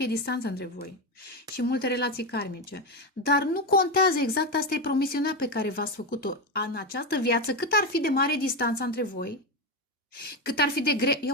distanță între voi și multe relații karmice, dar nu contează, exact asta e promisiunea pe care v-ați făcut-o în această viață, cât ar fi de mare distanța între voi, cât ar fi de grele,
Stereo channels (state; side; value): normal; both; correlation 0.13